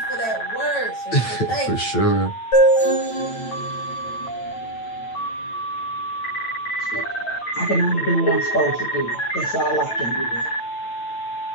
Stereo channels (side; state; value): right; late; 9.0 ms